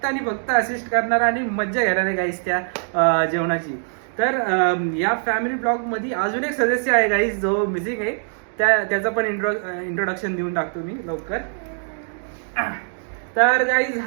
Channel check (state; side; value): silent; left; digital silence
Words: आणि फक्त असिस्ट करणार आणि मज्जा घेणार आहे गाईज त्या जेवणाची. तर या फॅमिली ब्लॉगमध्ये अजून एक सदस्य आहे गाईज जो मिसिंग आहे, त्याचं पण इंट्रोडक्शन देऊन टाकतो मी लवकर. तर गाईज